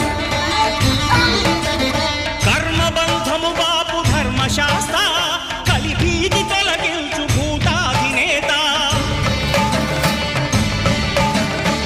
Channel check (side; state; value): both; identical; correlation 1.00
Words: కర్మబంధము బాపు ధర్మశాస్త్ర కలిభీతి తొలగించు భూతాధినేత